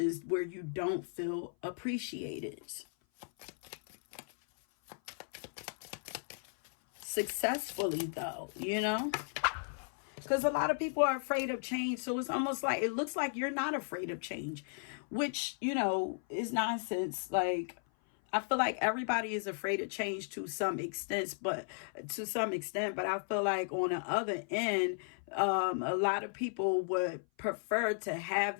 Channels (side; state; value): right; silent; 54 dB below the other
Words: where you don't feel appreciated. Successfully though, you know, because a lot of people are afraid of change. So it's almost like, it looks like you're not afraid of change, which, you know, is nonsense. Like, I feel like everybody is afraid of change to some extent, but I feel like on the other end, a lot of people would prefer to have